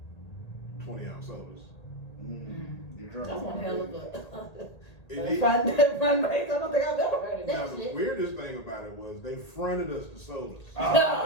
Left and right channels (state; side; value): late; right; 1.8 ms